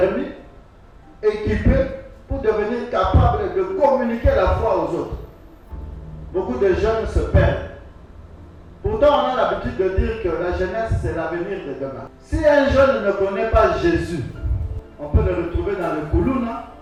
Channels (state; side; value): identical; both; correlation 1.00